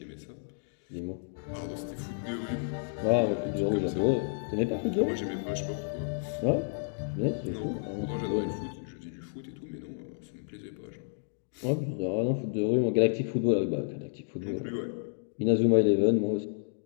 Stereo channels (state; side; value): silent; right; digital silence